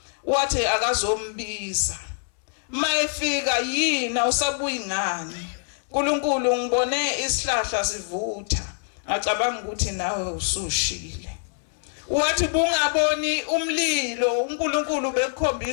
wathi akazombiza. Mayefika yina usabuyi ngani? uNkulunkulu ngibone isihlahla sivutha, ngacabanga ukuthi nawe usushile. Wathi bungaboni umlilo, uNkulunkulu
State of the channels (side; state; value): right; silent; 62 dB below the other